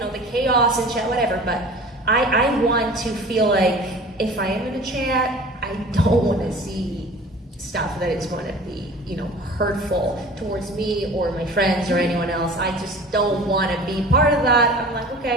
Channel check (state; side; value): normal; both; correlation 0.42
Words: chaos and chat, whatever. But I want to feel like if I am in a chat, I don't want to see stuff that is going to be, hurtful towards me or my friends or anyone else. I just don't want to be part of that. I'm like,